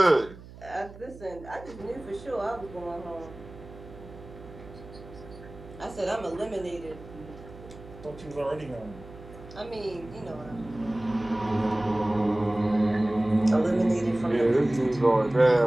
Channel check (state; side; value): noise; right; hum, 17 dB below the sound